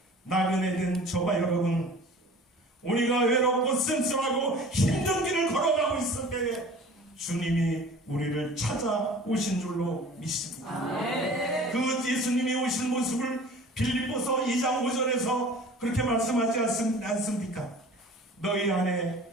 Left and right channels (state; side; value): normal; both; correlation 0.44